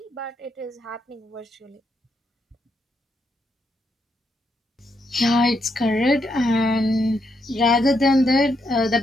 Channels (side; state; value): both; normal; correlation 0.79